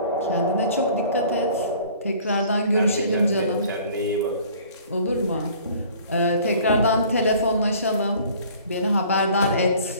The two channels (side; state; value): both; inverted; correlation -0.52